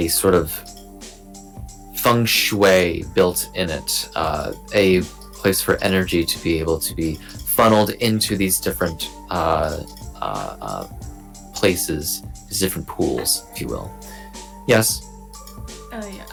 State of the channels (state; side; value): identical; both; correlation 1.00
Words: sort of feng shui built in it, a place for energy to be able to be funneled into these different places, these different pools, if you will. Yes? Yeah,